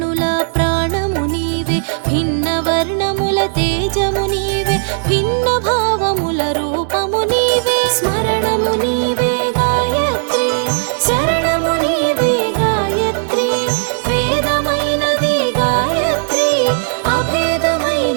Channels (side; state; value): left; silent; digital silence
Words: ప్రాణము నీవే భిన్న వర్ణముల తేజము నీవే భిన్న భావముల రూపము నీవే స్మరణము నీవే గాయత్రి శరణము నీవే గాయత్రి వేదమైన